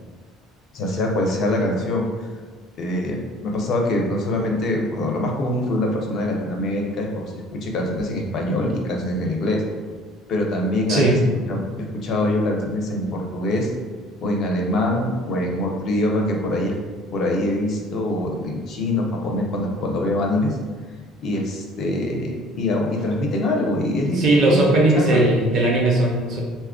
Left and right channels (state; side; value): normal; both; correlation 0.52